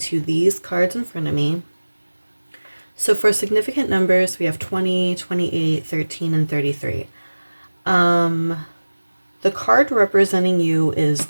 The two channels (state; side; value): inverted; both; correlation -1.00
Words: these cards in front of me. So for significant numbers, we have 20, 28, 13, and 33. The card representing you is